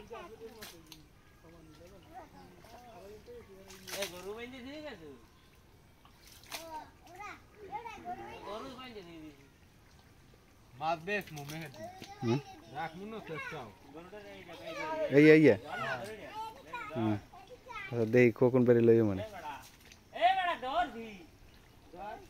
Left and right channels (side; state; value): both; identical; correlation 1.00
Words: এই গরু বাইন্দে দিয়ে গেছে গরু বাইন্দে দিয়ে দিয়েছে মাছ বেশ মুমে হেদি রাখমু না চেষ্টাও এই এই হুম আচ্ছা দেই কোকন বেরি লইও মানে এ বড়া দৌড় দি